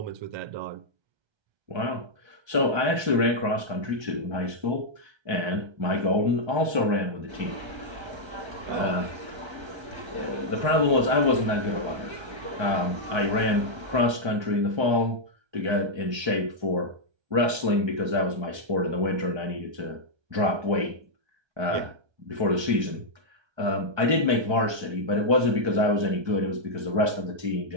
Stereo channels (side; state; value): left; late; 1.3 ms